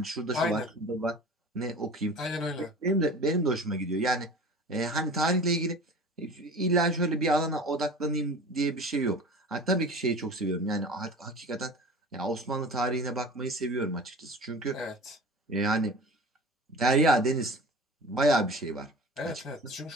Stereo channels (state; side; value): normal; both; correlation 0.39